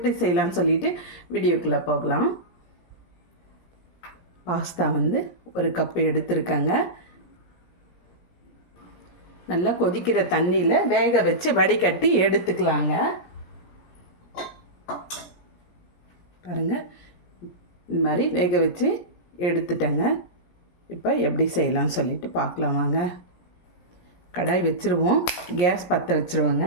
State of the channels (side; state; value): right; late; 17 ms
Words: செய்யலான்னு சொல்லிட்டு வீடியோக்குள்ளே போகலாம். பாஸ்தா ஒரு கப்பு எடுத்துருக்கேங்க. நல்லா கொதிக்கிற தண்ணியில் வேக வச்சு வடிகட்டி எடுத்துக்கலாங்க. பாருங்கள், இந்த மாதிரி வேக வச்சு எடுத்துட்டேங்க. இப்போ எப்படி செய்யலாம்னு சொல்லிட்டு பார்க்கலாம் வாங்க. கடாய் வச்சுருவோம். கேஸ் பற்ற வச்சுருவோங்க.